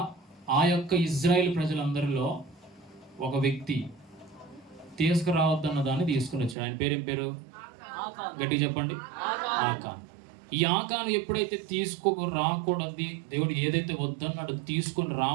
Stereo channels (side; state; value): left; drops out; at 6.6 s